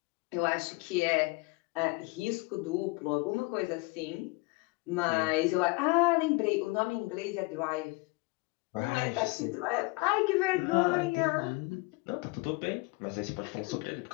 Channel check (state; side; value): quieter; right; 25.5 dB